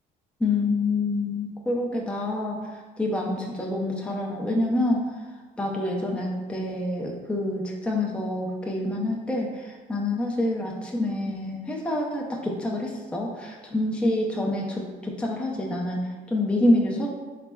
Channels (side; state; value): both; normal; correlation 0.72